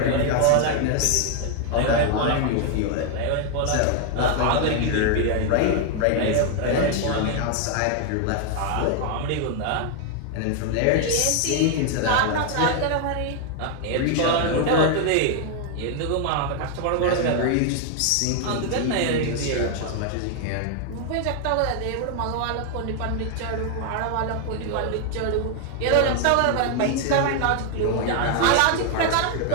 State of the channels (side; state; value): both; different; correlation 0.00